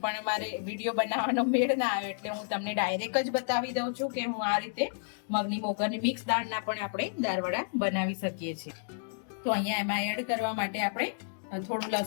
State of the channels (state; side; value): silent; right; digital silence